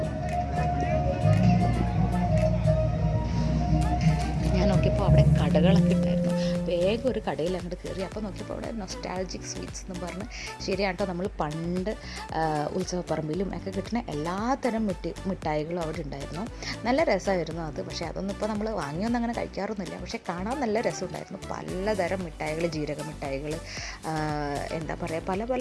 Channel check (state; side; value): identical; both; correlation 1.00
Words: ഞാൻ നോക്കിയപ്പോൾ അവിടെ കടകളൊക്കെ ഉണ്ടായിരുന്നു. വേഗം ഒരു കടയിൽ അങ്ങോട്ട് കയറി. അപ്പോൾ നോക്കിയപ്പോൾ അവിടെ നൊസ്റ്റാൾജിക് സ്വീറ്റ്സ് എന്ന് പറഞ്ഞ്, ശരിയാട്ടോ, നമ്മൾ പണ്ട് ഉത്സവപ്പറമ്പിലും ഒക്കെ കിട്ടുന്ന എല്ലാത്തരം മിഠായികളും അവിടെ ഉണ്ടായിരുന്നു. നല്ല രസമായിരുന്നു അത്. പക്ഷേ അതൊന്നും ഇപ്പോൾ നമ്മൾ വാങ്ങിയൊന്നും അങ്ങനെ കഴിക്കാറൊന്നുമില്ല. പക്ഷേ കാണാൻ നല്ല രസമുണ്ടായിരുന്നു. പലതരം മിഠായികൾ, ജീരക മിഠായികൾ, എന്താ പറയുക,